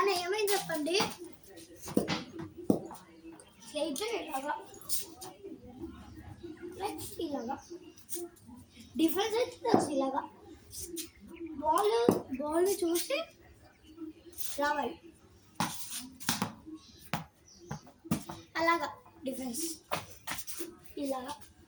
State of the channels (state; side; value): identical; both; correlation 1.00